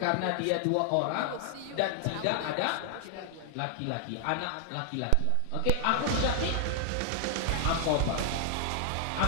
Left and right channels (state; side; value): different; both; correlation 0.00